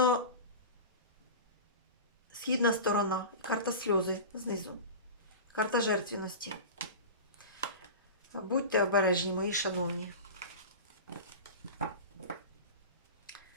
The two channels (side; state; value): both; inverted; correlation -0.30